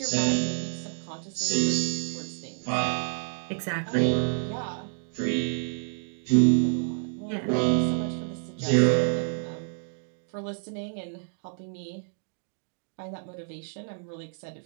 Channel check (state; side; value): silent; left; digital silence